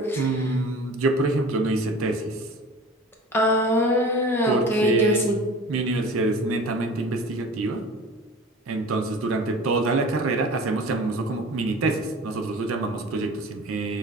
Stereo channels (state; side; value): normal; both; correlation 0.40